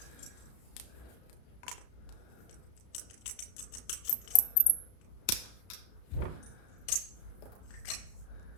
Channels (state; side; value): late; right; 33 ms